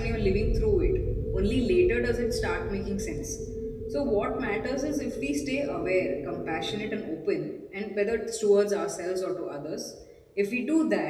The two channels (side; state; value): both; identical; correlation 1.00